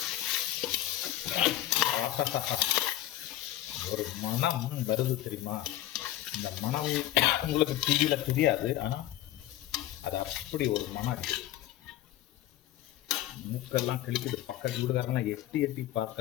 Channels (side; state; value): right; quieter; 13.9 dB